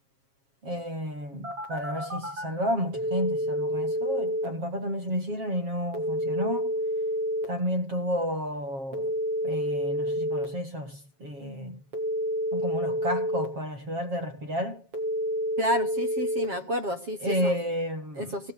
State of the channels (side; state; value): left; late; 7.4 ms